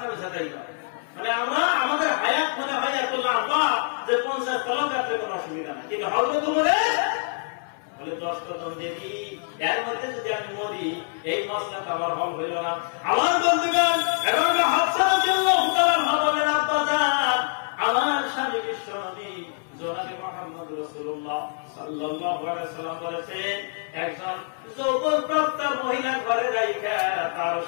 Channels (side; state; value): right; silent; 61 dB below the other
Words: আমি সাথে মানে আমরা আমাদের হায়াত মনে হয় এত লম্বা যে 50 তলা কাটলে কোনো অসুবিধা নাই, কিন্তু হয়তো তোমার বলে 10 কদম দেবী, এর মধ্যে যদি আমি মরি এই মশলাটা আবার হল হইল না। আমার বন্ধুগণ, এবং হাফসা রাদিয়াল্লাহু তাআলা আনহা বলেন, আব্বা জান আমার স্বামী বিশ্ব নবী জনাবে মুহাম্মদ রাসূলুল্লাহ সাল্লাল্লাহু আলাইহি সাল্লাম বলেছেন, একজন যৌবনপ্রাপ্ত মহিলা ঘরে রাইখা তার